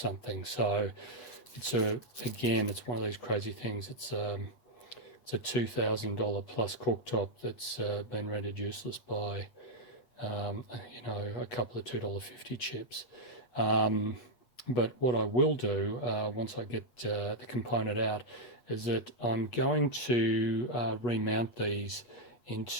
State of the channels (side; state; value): right; late; 8.2 ms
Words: So it's again, it's one of these crazy things. It's a $2,000 plus cooktop that's been rendered useless by, you know, a couple of $2.50 chips. But what I will do once I get the component out is that I'm going to remount these